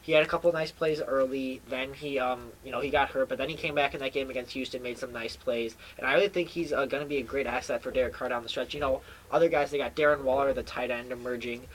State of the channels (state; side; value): identical; both; correlation 1.00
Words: he had a couple of nice plays early. Then he got hurt, but then he came back in that game against Houston, made some nice plays. And I really think he's going to be a great asset for Derek Carr down the stretch. Other guys, they got Darren Waller, the tight end, emerging,